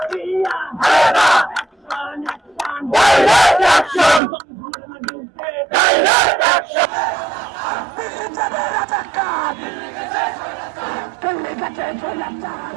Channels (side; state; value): left; drops out; at 4.2 s